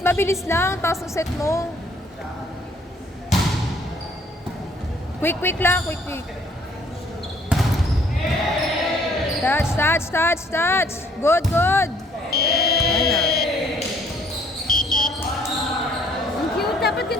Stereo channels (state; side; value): normal; both; correlation 0.61